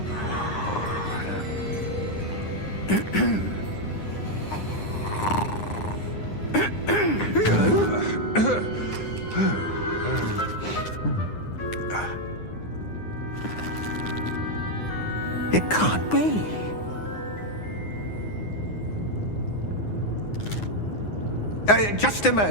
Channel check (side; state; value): right; late; 9.8 ms